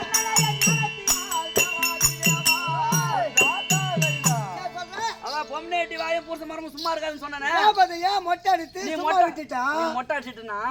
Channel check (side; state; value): both; identical; correlation 1.00